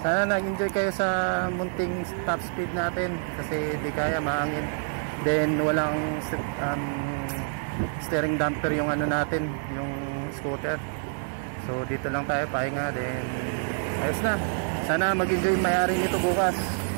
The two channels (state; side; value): silent; left; 60 dB below the other